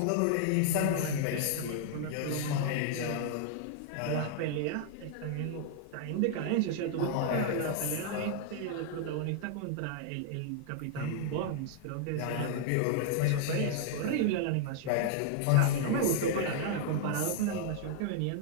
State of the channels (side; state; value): both; different; correlation -0.01